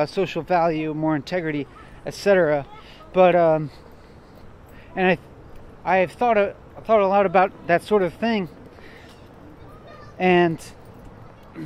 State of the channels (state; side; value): identical; both; correlation 1.00